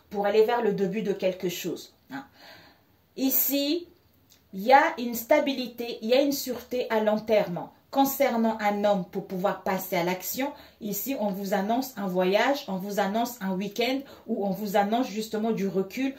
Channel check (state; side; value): identical; both; correlation 1.00